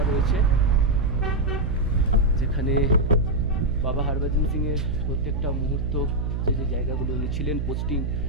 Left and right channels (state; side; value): noise; right; hum, 1 dB below the sound